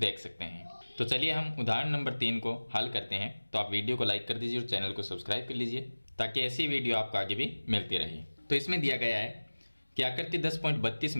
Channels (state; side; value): inverted; both; correlation -1.00